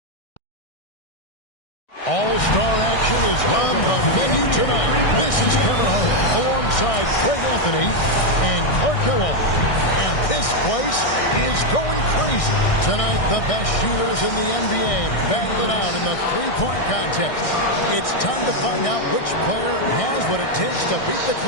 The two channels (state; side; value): late; right; 1.6 ms